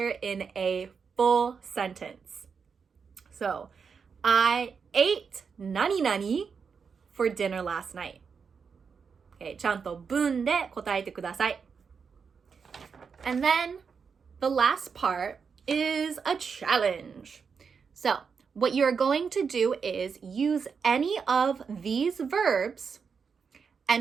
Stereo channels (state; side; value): quieter; left; 5.9 dB